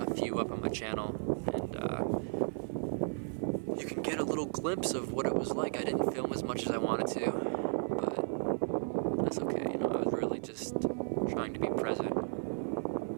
few up on my channel, and you can get a little glimpse of what it was like. I didn't film as much as I wanted to, but that's okay. You know, I was really just trying to be present.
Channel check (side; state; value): left; silent; 55 dB below the other